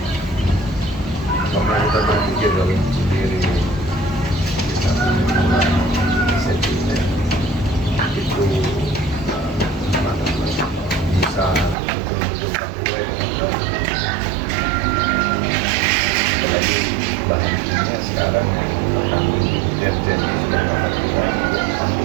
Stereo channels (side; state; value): left; drops out; at 11.8 s